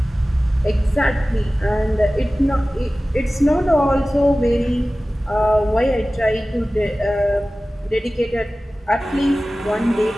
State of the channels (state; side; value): normal; both; correlation 0.97